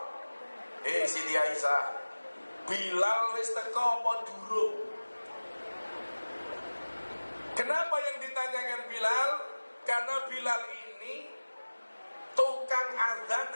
Siti Aisyah, Bilal wis teko apa durung? Kenapa yang ditanyakan Bilal? Karena Bilal ini tukang azan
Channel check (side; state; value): both; inverted; correlation -1.00